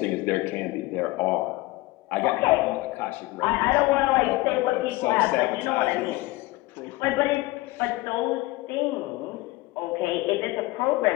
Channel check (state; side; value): quieter; right; 20.5 dB